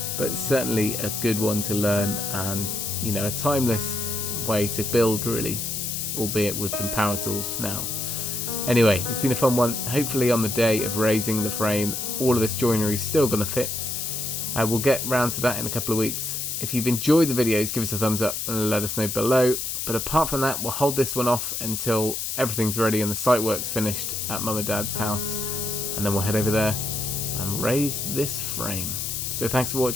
but certainly a good one to learn, and you know, a timeless way to build really, albeit with some power tools now. Anyway, it's been a fun one. Hopefully on the day of raising the frame all of this joinery is still going to fit. We'll get round to that in a couple of weeks. If you've enjoyed the videos, give us a thumbs up and let us know below. But apart from that, we'll hold this one off until everything's ready and the site work's finished at Mum and Dad's house, and then we'll head over there and raise this frame. So thanks for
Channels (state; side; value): noise; left; hiss, 3 dB below the sound